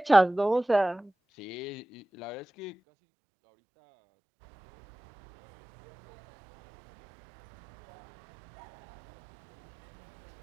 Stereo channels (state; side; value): drops out; left; at 2.8 s